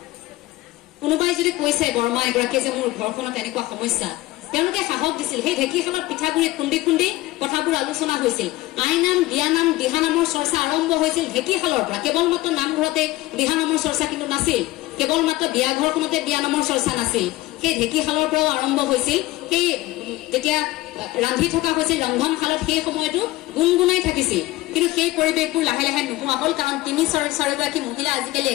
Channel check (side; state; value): right; quieter; 18.3 dB